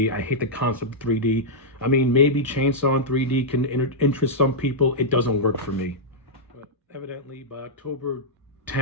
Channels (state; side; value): normal; both; correlation -0.08